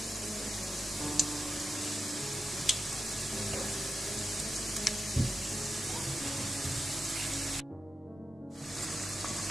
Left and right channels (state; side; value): normal; both; correlation 0.89